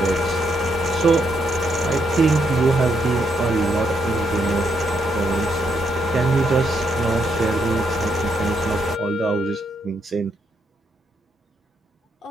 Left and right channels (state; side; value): normal; both; correlation 0.77